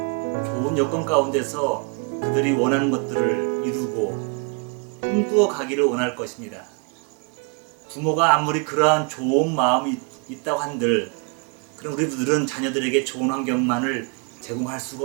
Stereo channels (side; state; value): left; quieter; 36.3 dB